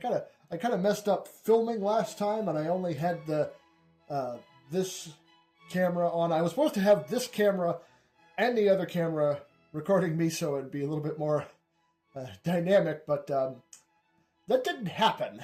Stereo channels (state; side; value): identical; both; correlation 1.00